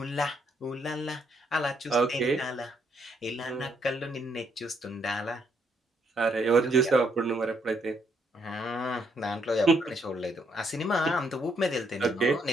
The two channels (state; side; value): normal; both; correlation 0.72